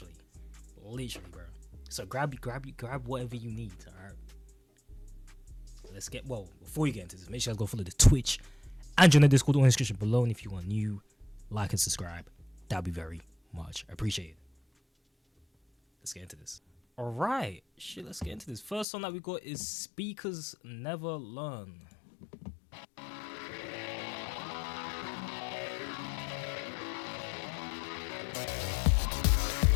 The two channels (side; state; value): right; drops out; at 18.9 s